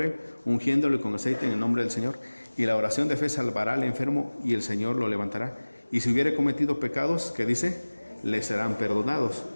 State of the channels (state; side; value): inverted; both; correlation -1.00